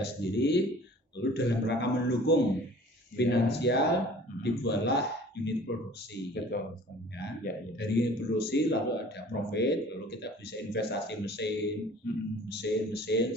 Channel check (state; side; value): normal; both; correlation 0.48